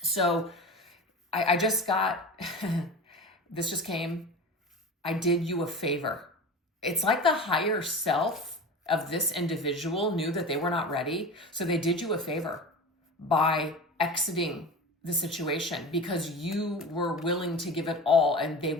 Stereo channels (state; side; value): normal; both; correlation 0.31